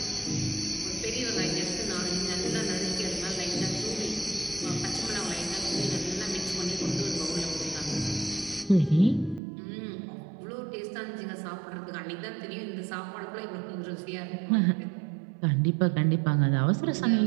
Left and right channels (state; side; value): drops out; left; at 9.4 s